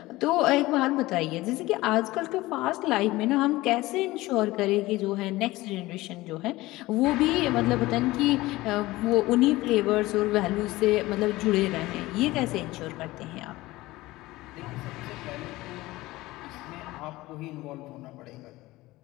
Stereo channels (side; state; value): right; quieter; 18.9 dB